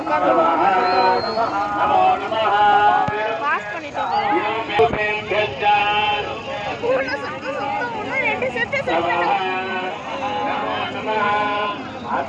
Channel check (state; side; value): identical; both; correlation 1.00